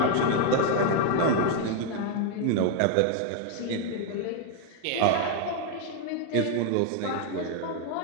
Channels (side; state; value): both; different; correlation 0.01